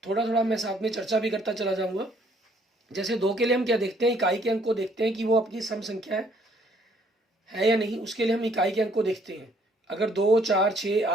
थोड़ा थोड़ा मैं साथ में चर्चा भी करता चला जाऊँगा। जैसे 2 के लिए हम क्या देखते हैं, इकाई के अंक को देखते हैं कि वो अपनी सम संख्या है या नहीं। उसके लिए हम इकाई के अंक को देखते हैं। अगर 2, 4, 6,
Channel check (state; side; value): normal; both; correlation 0.64